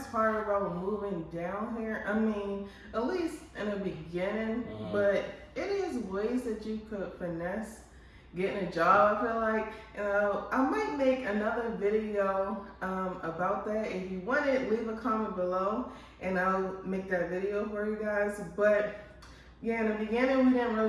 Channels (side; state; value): both; identical; correlation 1.00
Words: part about moving down here. I mean, at least in the beginning, but it is ways that you could finesse getting a job, I feel like. I might make another video about that. If you want it, leave a comment below and I'll make that video for you guys. But yeah, in the beginning, we didn't